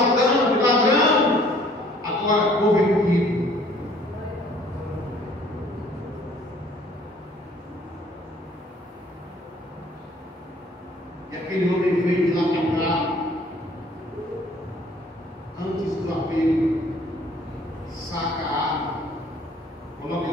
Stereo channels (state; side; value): normal; both; correlation 0.57